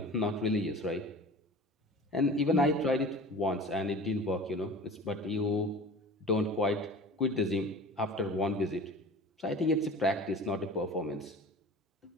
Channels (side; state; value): both; normal; correlation 0.39